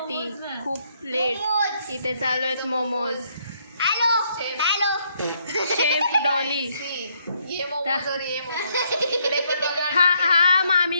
खूप लेट. इथे चालू आहेत मोमोज. Chef Dolly. हा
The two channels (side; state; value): both; inverted; correlation -0.72